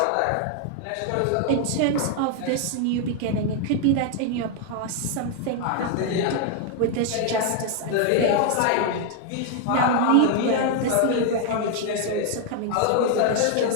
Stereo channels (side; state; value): both; different; correlation 0.00